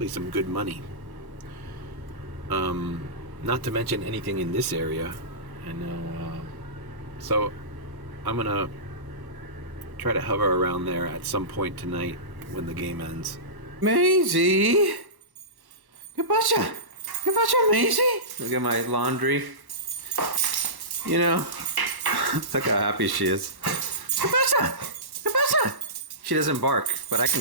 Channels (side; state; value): left; late; 1.1 ms